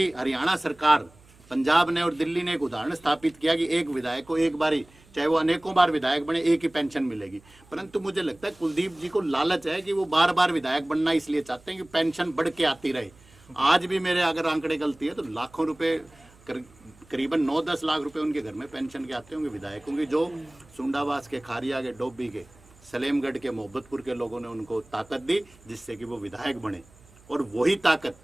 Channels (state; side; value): noise; right; hum, 27 dB below the sound